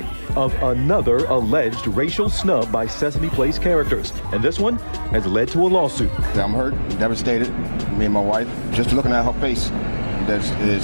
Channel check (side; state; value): both; inverted; correlation -1.00